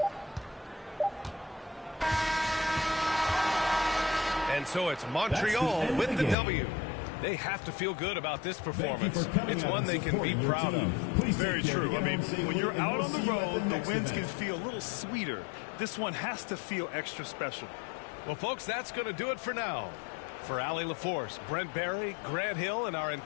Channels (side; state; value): right; drops out; at 6.4 s